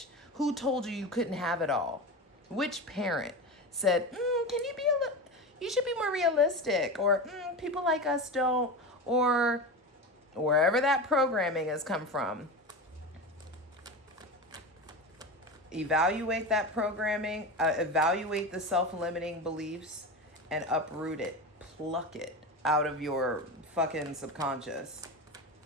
Who told you couldn't have it all? Which parent said, can you be you should be more realistic, or people like us don't, or wherever that programming has come from. Evaluate that programming, evaluate the self-limiting beliefs, and uproot it, pluck it out of your fucking subconscious.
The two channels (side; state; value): both; normal; correlation 0.24